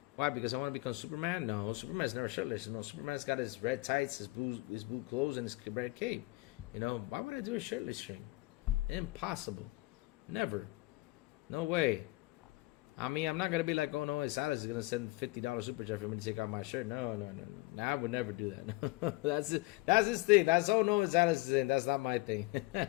Why? Because I want to become Superman? No, Superman's never shirtless. Superman's got his red tights, his blue clothes, and his red cape. Why would I do a shirtless stream? Impossible. Never. No way. I mean, I'm not going to be like, oh, no, Salas is going to send $50 super chat for me to take out my shirt. No. I would never do that. That's his thing. That's, oh, no, Salas is in. That's not my thing.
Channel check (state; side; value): quieter; right; 21.5 dB